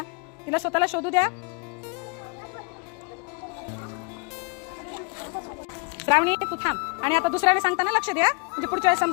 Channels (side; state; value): right; quieter; 33.6 dB